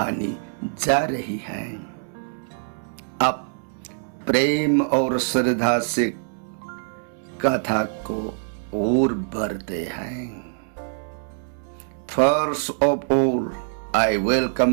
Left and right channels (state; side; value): silent; left; 62 dB below the other